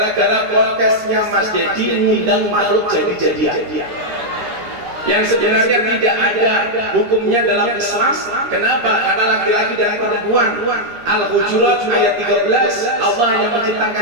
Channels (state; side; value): late; left; 13 ms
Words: podcastnya Mas Dedi ngundang makhluk jadi-jadian. Yang sebenarnya tidak ada hukumnya dalam Islam. Kenapa? Karena laki-laki dan perempuan. Al-Hujurat ayat 13, Allah hanya